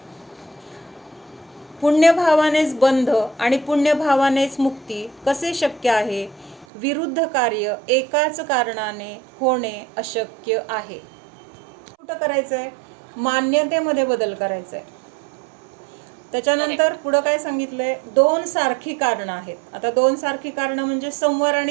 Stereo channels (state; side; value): drops out; left; at 6.7 s